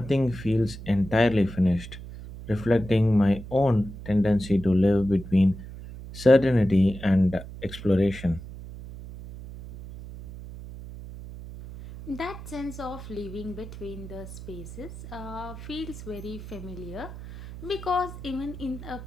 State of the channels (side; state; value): right; noise; hum, 13 dB below the sound